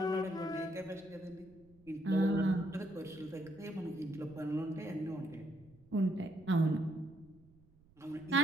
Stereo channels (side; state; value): right; noise; rumble, 27 dB below the sound